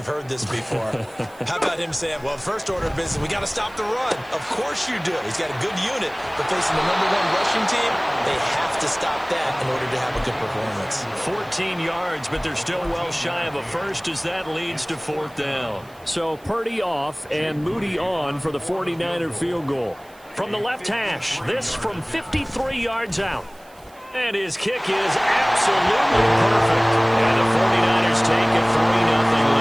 heard this before. How about him saying, well, first order of business, we got to stop the run. Of course you do. He's got a good unit, but facing the #1 rushing team, they have to stop that in order to have a good performance. 14 yards, but they're still well shy of a first as that leads to 4th down. So Purdy off and Moody on for the 49er field goal. From the left hash, this from 53 yards out. And his kick is absolutely perfect. And the 49ers take a 3-0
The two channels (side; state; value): right; noise; hiss, 27 dB below the sound